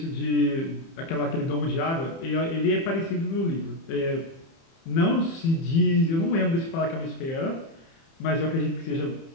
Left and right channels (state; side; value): late; right; 30 ms